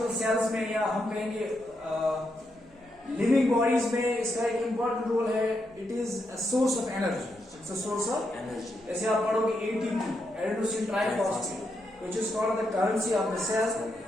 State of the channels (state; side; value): noise; right; hum, 29 dB below the sound